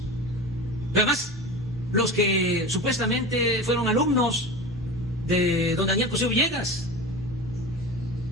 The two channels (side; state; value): both; normal; correlation 0.30